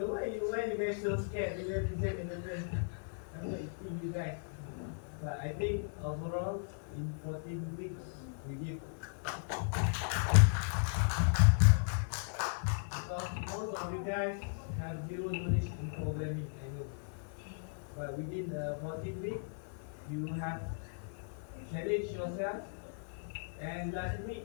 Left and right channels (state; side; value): silent; right; 54 dB below the other